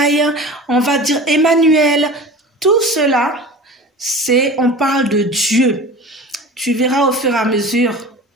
on va dire Emmanuel. Tout cela, on parle de Dieu. Tu verras au fur et à mesure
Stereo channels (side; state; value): both; normal; correlation 0.36